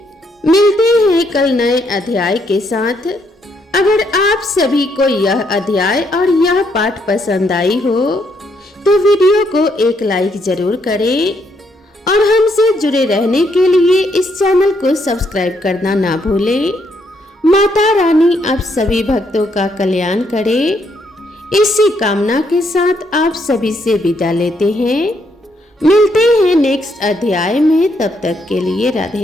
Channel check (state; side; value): normal; both; correlation 0.74